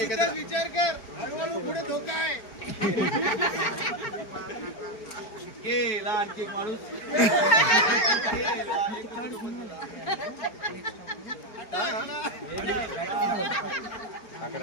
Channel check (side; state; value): right; late; 4.8 ms